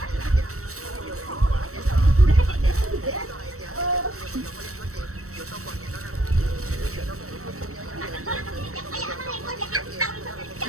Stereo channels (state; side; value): late; left; 0.64 ms